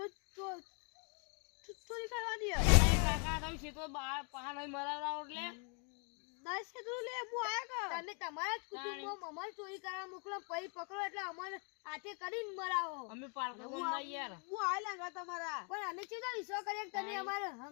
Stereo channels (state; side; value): quieter; right; 38.5 dB